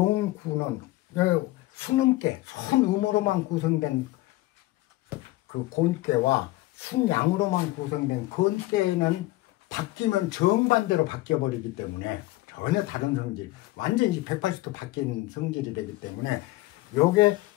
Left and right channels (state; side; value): quieter; right; 18.4 dB